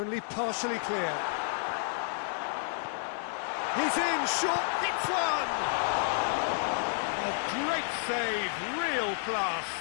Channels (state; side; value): silent; right; digital silence